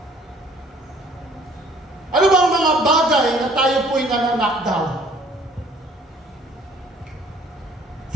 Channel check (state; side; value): normal; both; correlation 0.57